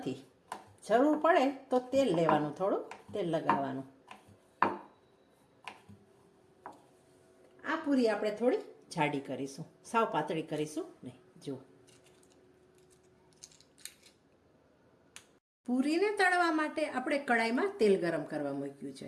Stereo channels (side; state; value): both; identical; correlation 1.00